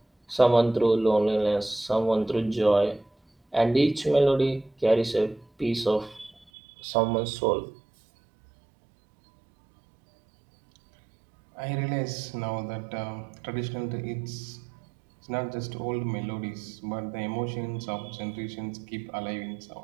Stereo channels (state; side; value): drops out; left; at 6.5 s